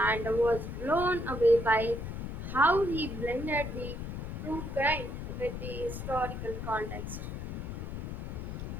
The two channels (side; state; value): left; noise; rumble, 6 dB below the sound